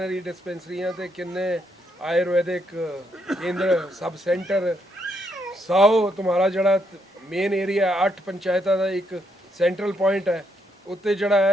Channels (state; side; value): normal; both; correlation 0.76